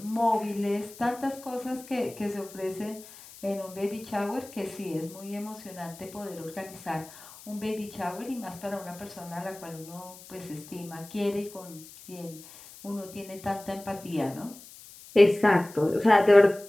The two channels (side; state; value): left; noise; hiss, 19 dB below the sound